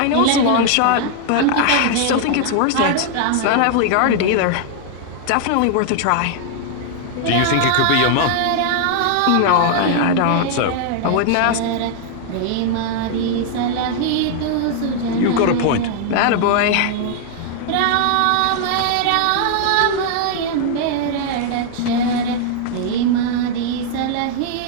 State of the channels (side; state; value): both; different; correlation 0.00